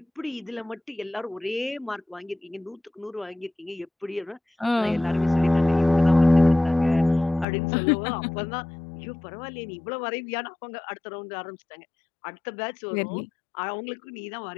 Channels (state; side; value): drops out; right; at 7.5 s